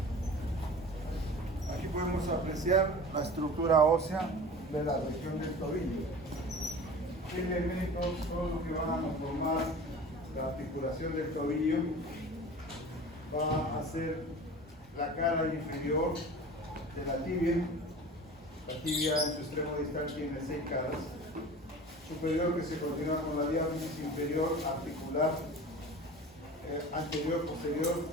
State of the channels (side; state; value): both; normal; correlation 0.38